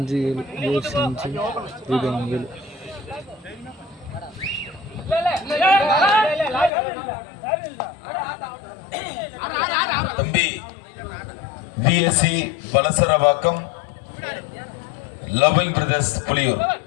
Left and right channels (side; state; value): right; drops out; at 6.7 s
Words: 7 AFC 5 ஜெய்பவனி 7. தம்பி VSC Valasaravakkam loving brothers Puliyur